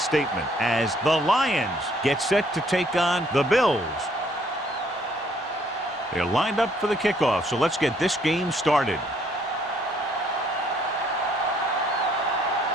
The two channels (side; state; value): both; normal; correlation 0.65